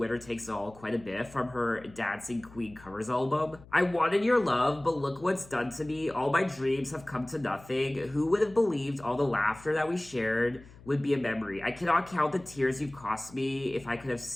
Takes It All quite a bit from her Dancing Queen covers album. I wanted your love, but look what's done to me. All my dreams have come to nothing. Who would have believed all the laughter that we shared would be a memory? I cannot count the tears you've cost me if I could have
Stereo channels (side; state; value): left; noise; hum, 22 dB below the sound